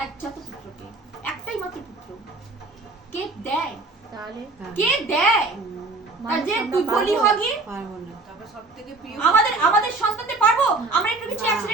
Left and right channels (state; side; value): quieter; left; 3.3 dB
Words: একজাত পুত্রকে, একটাই মাত্র পুত্র। কে দেয়? তাহলে কে দেয়? তার যে তুই বলি হগি পারবো না। আমাদের সন্তানদের পারবো? আমরা একটু কিছু